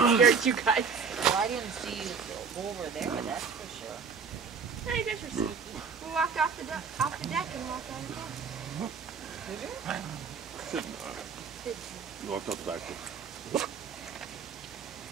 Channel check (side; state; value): left; quieter; 5.7 dB